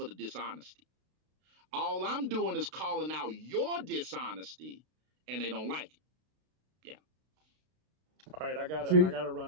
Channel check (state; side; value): late; left; 32 ms